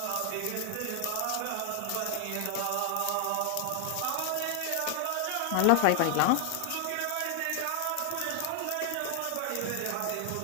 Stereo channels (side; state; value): both; different; correlation 0.00